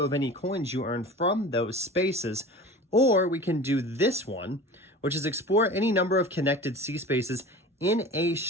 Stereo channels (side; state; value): both; normal; correlation 0.37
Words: of any coins you earn from those spaces. Or we can do this one, which is explore any number of connected sea spaces in a